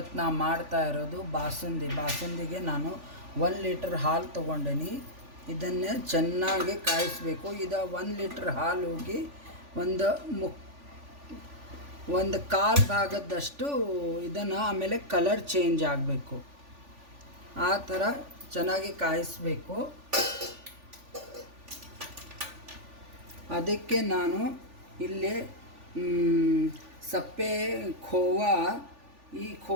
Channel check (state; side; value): late; left; 3.5 ms